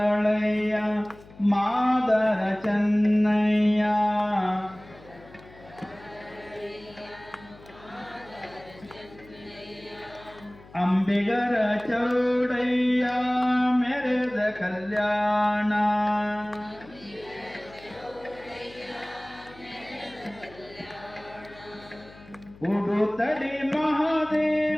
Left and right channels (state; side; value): noise; left; hum, 22 dB below the sound